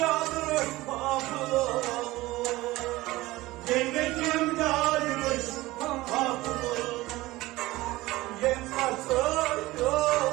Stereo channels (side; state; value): left; quieter; 18.8 dB